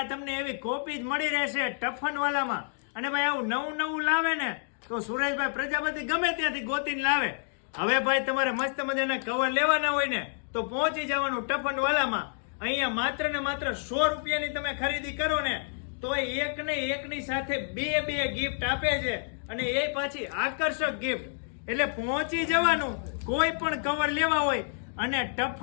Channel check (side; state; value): right; silent; digital silence